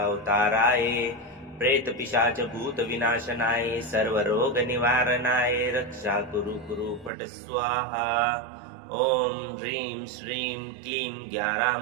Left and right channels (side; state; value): left; drops out; at 7.1 s